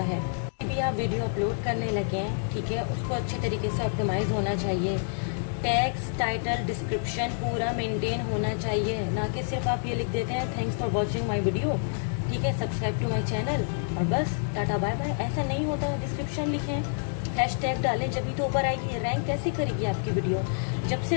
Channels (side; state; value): right; silent; digital silence